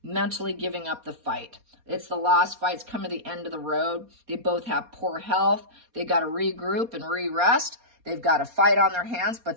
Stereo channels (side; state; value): left; late; 4.2 ms